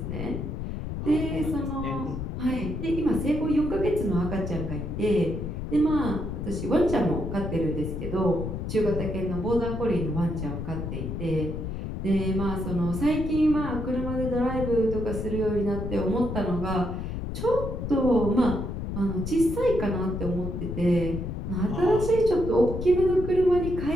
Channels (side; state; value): left; noise; rumble, 5 dB below the sound